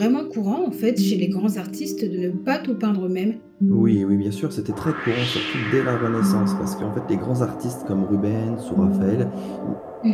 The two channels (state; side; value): identical; both; correlation 1.00